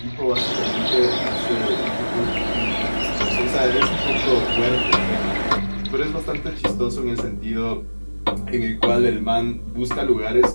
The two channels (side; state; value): both; inverted; correlation -1.00